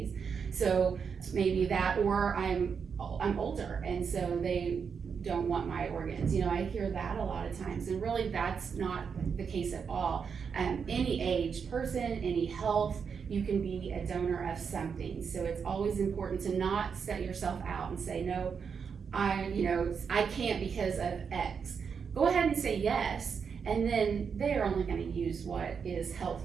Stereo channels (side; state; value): left; quieter; 6.3 dB